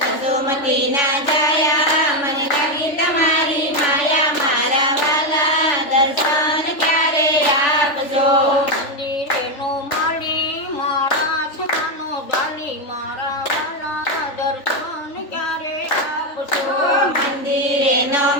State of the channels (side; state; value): right; late; 3.4 ms